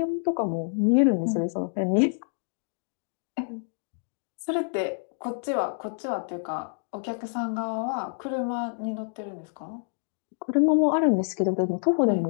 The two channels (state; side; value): silent; right; digital silence